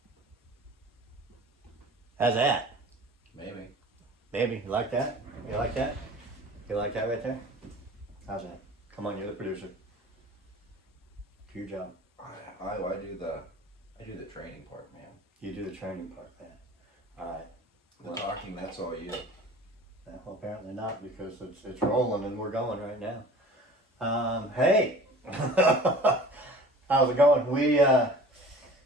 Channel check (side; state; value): both; normal; correlation 0.44